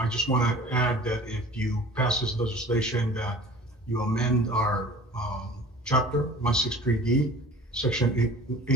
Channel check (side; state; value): both; normal; correlation 0.43